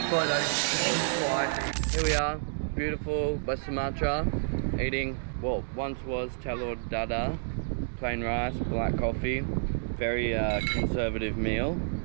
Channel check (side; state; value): left; silent; digital silence